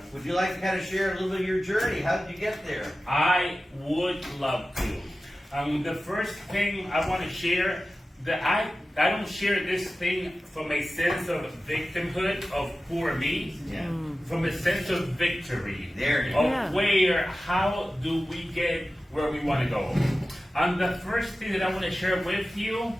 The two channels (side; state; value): both; normal; correlation 0.95